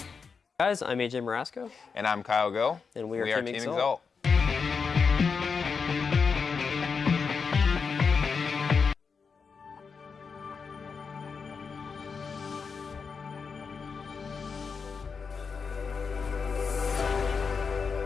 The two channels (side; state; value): right; quieter; 5.4 dB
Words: Guys, I'm AJ Marasco. And I'm Kyle Go. And we are Team Exalt.